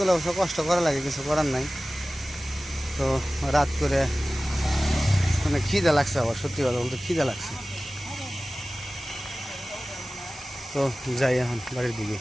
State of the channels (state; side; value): normal; both; correlation 0.97